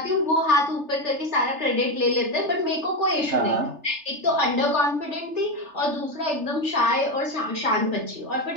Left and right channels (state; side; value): late; left; 3.3 ms